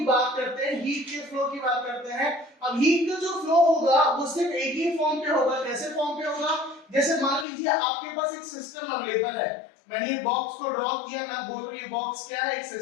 बात करते हैं, हीट के फ्लो की बात करते हैं, अब हीट का जो फ्लो होगा वो सिर्फ एक ही फॉर्म पे होगा। कैसे फॉर्म पे होगा? जैसे मान लीजिए आपके पास एक सिस्टम अवेलेबल है, मैंने ये बॉक्स को ड्रॉ किया, मैं बोल रहा हूं ये बॉक्स क्या है? एक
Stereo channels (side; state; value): right; drops out; at 7.5 s